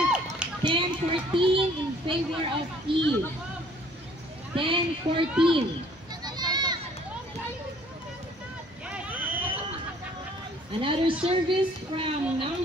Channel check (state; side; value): normal; both; correlation 0.57